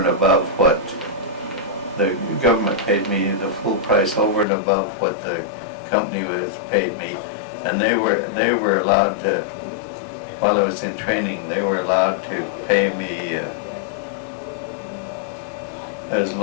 above what the government paid me, the full price over and above what the company was paid me. And they were allowed to, while I was in training, they were allowed to pay me as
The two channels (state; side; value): drops out; right; at 4.5 s